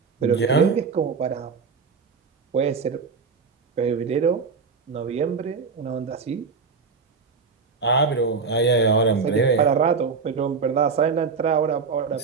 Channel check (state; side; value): quieter; left; 5.1 dB